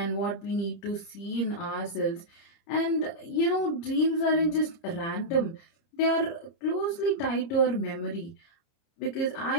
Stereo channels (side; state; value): right; late; 29 ms